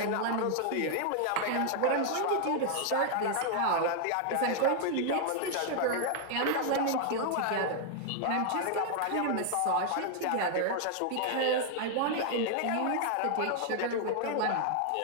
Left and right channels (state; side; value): different; both; correlation 0.00